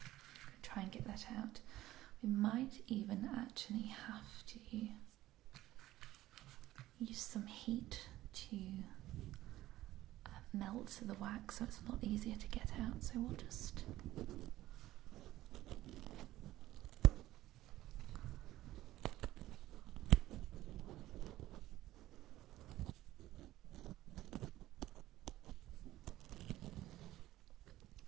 Try and get that out. We might even actually have to use some heat to melt the wax so it's a lot easier to get out. So we'll just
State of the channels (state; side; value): quieter; left; 15.3 dB